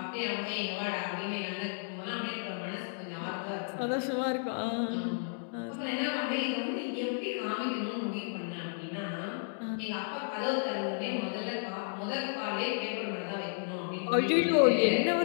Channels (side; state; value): right; silent; digital silence